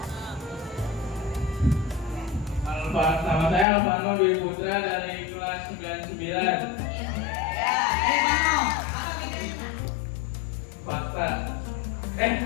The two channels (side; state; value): right; drops out; at 3.7 s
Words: Nama saya Alvano Dwi Putra dari kelas 99. Ya, Alvano. Apa bedanya? Fakta.